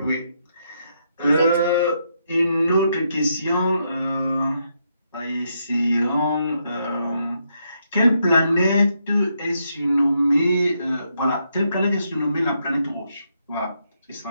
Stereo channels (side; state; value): both; inverted; correlation -0.78